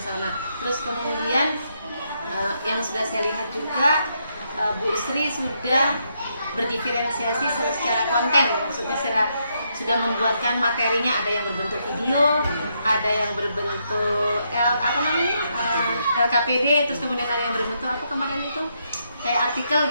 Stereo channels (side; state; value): both; inverted; correlation -0.78